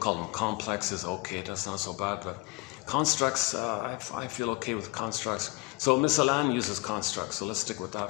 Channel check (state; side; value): quieter; right; 25.1 dB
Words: them complexes. Okay, that's not so bad, but constructs, I feel okay with constructs. So Miss Alan uses constructs, so let's stick with that